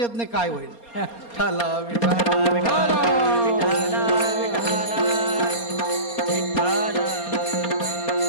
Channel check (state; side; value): late; right; 4.3 ms